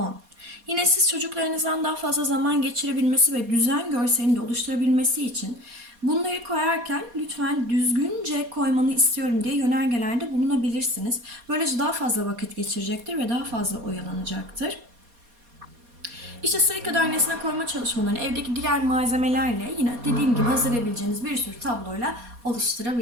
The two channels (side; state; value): left; late; 4.2 ms